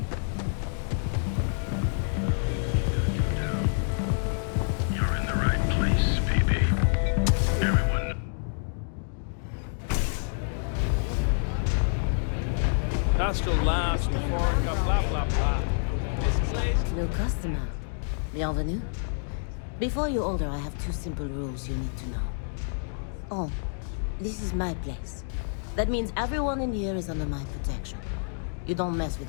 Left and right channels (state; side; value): silent; right; digital silence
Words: You're in the right place, baby. Everyone. That's the last blah, blah, blah, blah. New customer. Bienvenue. Before you order, I have two simple rules you need to know. Oh, this is my place. That means everyone in here is under my protection. You don't mess with